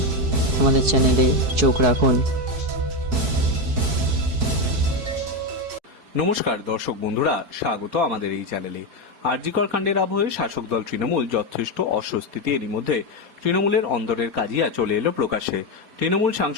আমাদের চ্যানেলে চোখ রাখুন। নমস্কার দর্শক বন্ধুরা, স্বাগত আমাদের এই চ্যানেলে। আরজিকর কাণ্ডের আবহে শাসক দল তৃণমূল যথেষ্ট অস্বস্তিতে। এরই মধ্যে তৃণমূলের অন্দরের কাজিয়া চলে এলো প্রকাশ্যে। তৃণমূল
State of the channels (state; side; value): late; left; 4.7 ms